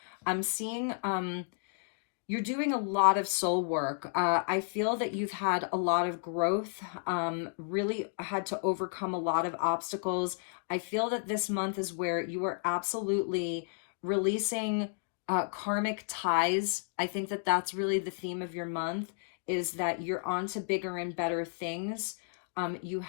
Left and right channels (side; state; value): right; silent; digital silence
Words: I'm seeing you're doing a lot of soul work. I feel that you've had a lot of growth, really had to overcome a lot of obstacles. I feel that this month is where you are absolutely releasing karmic ties. I think that that's really the theme of your month, is that you're on to bigger and better things. You